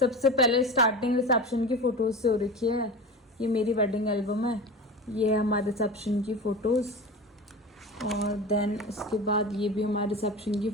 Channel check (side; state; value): both; normal; correlation 0.30